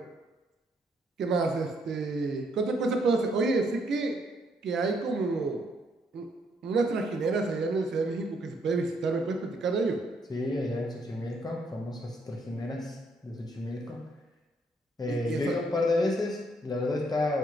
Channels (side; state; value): both; normal; correlation 0.71